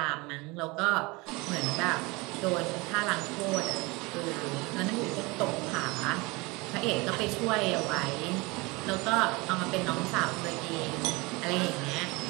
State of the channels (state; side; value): quieter; left; 24.8 dB